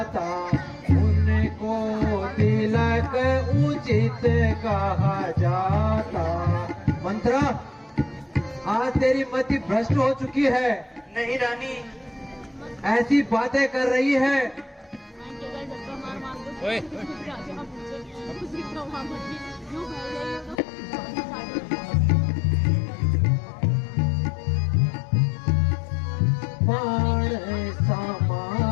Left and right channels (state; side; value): drops out; right; at 20.6 s